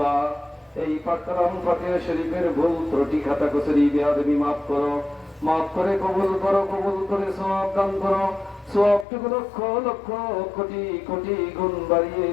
এই পাক কালাম ফাতিহা শরীফের ভুল ত্রুটি খাতা কসরি বেয়াদবি মাফ করো, মাফ করে কবুল করো, কবুল করে সওয়াব দান করো, সওয়াবটুকু লক্ষ লক্ষ কোটি কোটি গুণ বাড়িয়ে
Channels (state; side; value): drops out; right; at 9.1 s